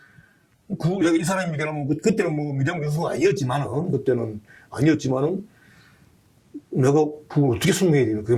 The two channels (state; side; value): identical; both; correlation 1.00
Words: 내가 이 사람이 그때는 미디어 교수가 아니었지만은 내가 그걸 어떻게 설명해야 되나.